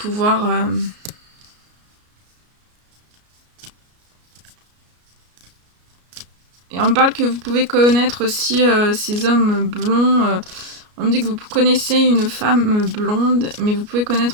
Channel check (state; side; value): late; left; 33 ms